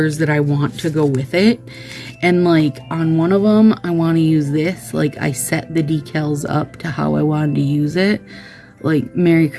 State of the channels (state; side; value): identical; both; correlation 1.00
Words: that I want to go with it. And like on one of them, I want to use this. Like I set the decals up to how I wanted to use it. Like Merry